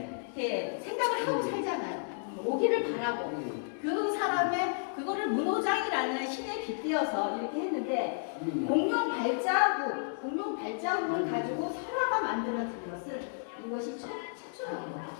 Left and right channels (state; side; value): silent; right; digital silence